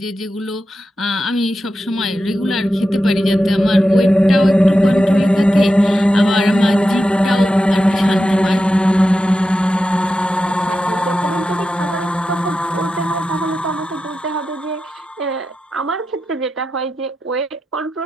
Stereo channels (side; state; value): both; normal; correlation 0.90